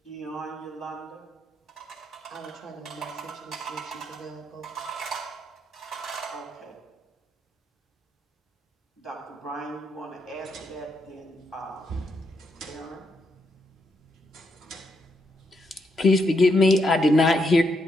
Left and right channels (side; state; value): both; normal; correlation 0.79